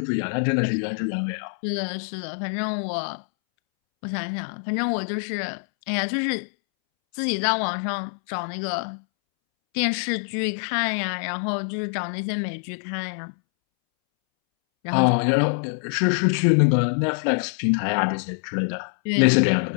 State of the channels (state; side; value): silent; right; 62 dB below the other